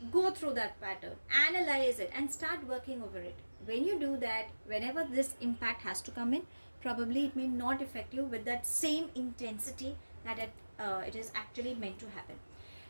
Go through that pattern, analyze it, and start working over it. When you do that, whenever this impact has to come in, probably it may not affect you with that same intensity that it is actually meant to happen.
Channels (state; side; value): inverted; both; correlation -1.00